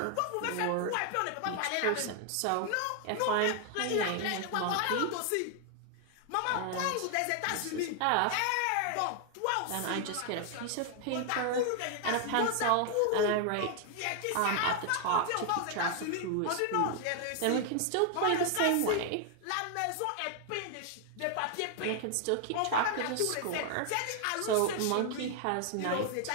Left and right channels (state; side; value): different; both; correlation 0.00